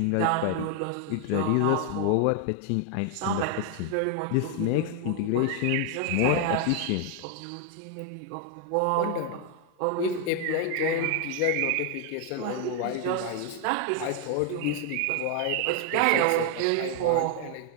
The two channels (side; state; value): both; different; correlation 0.00